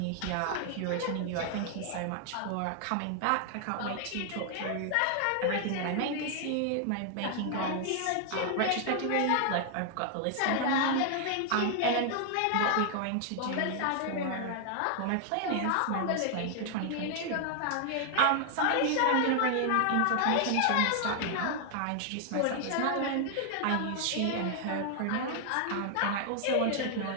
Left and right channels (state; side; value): different; both; correlation 0.00